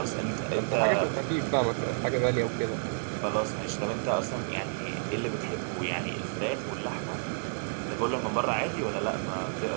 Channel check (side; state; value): left; silent; digital silence